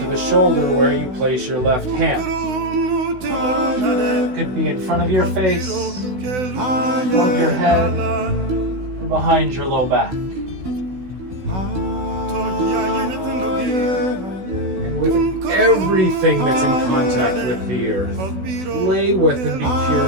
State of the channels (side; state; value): left; late; 16 ms